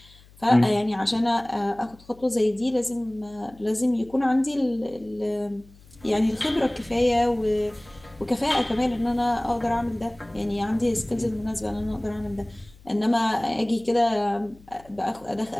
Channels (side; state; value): left; noise; hum, 25 dB below the sound